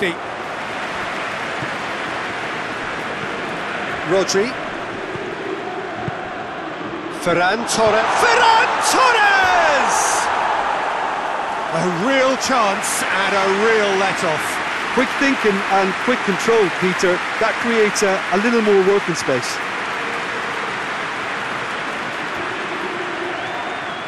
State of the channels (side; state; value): both; identical; correlation 1.00